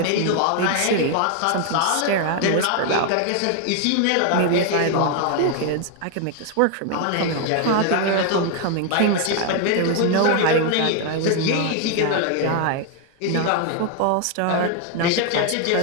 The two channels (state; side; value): different; both; correlation 0.00